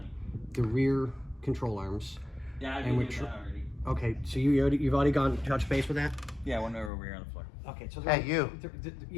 the rear control arms. Yeah, I've And been we're doing that already. Okay, so you've already gone touch base with that. Yeah, one over here on the floor. Okay, so Hey, you.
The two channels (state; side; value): drops out; right; at 6.9 s